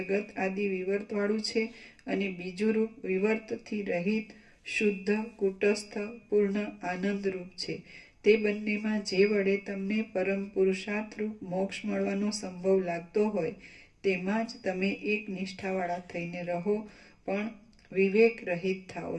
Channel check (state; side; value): identical; both; correlation 1.00